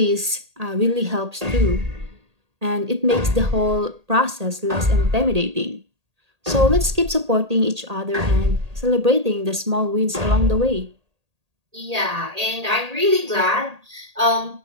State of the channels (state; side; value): late; left; 1.8 ms